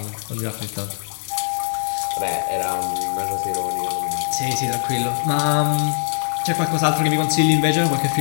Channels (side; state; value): right; silent; 65 dB below the other